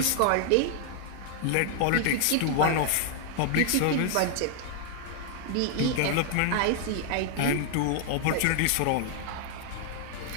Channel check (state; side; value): different; both; correlation 0.00